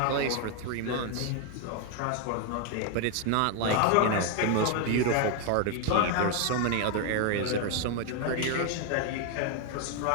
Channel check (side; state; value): both; different; correlation 0.01